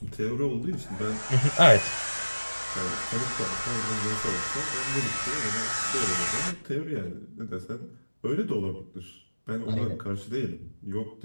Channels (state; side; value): inverted; both; correlation -1.00